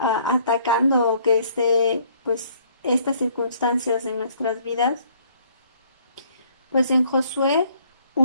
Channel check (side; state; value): both; inverted; correlation -0.62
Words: o que esté pues estas circunstancias en nuestras vidas, pues en Josué